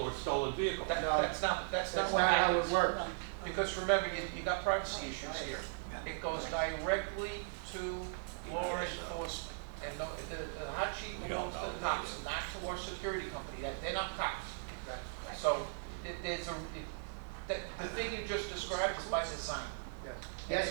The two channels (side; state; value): left; silent; digital silence